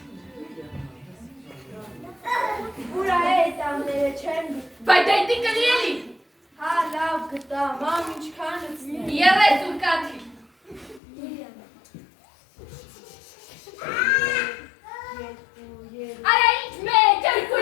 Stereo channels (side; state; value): right; drops out; at 11.0 s